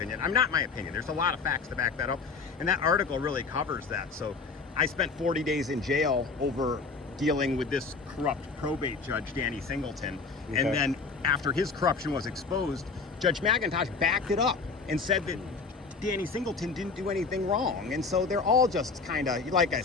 I'm not my opinion. There's a lot of facts to back that up. And that article really covers that. So I spent 40 days in jail over dealing with this corrupt probate judge, Danny Singleton. Okay. And then after his corruption was exposed, Judge McIntosh backed it up and said that Danny Singleton didn't do anything wrong. And so they're all just kind of, like I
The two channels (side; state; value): right; quieter; 4.6 dB